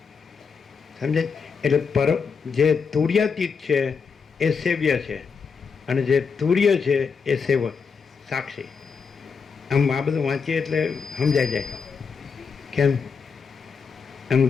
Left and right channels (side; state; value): right; quieter; 5.6 dB